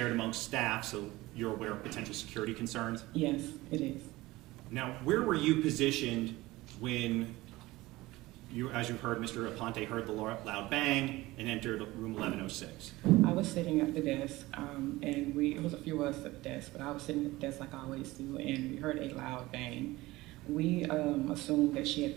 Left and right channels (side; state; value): left; quieter; 19.2 dB